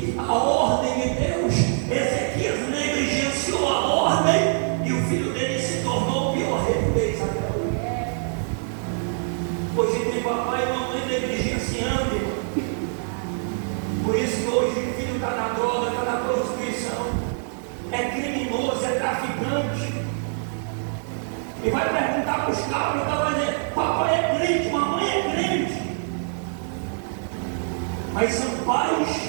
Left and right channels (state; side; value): silent; left; 62 dB below the other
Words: a ordem de Deus. Ezequias negligenciou a ordem e o filho dele se tornou o pior rei de Israel. Hoje tem papai e mamãe negligenciando, irmão. Por isso que hoje o filho está na droga, está na prostituição, é criminoso, é traficante. E vai perguntar para os cabros, vai dizer: papai é crente, mamãe é crente. Mas são pais,